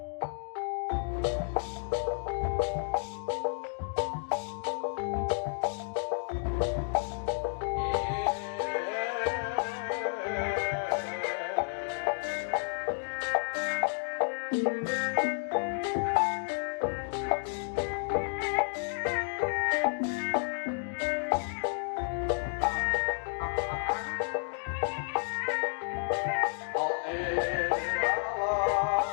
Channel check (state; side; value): silent; right; 57 dB below the other